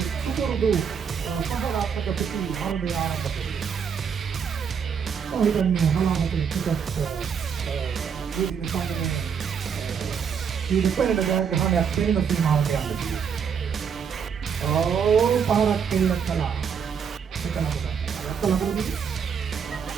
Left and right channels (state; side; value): quieter; left; 6.9 dB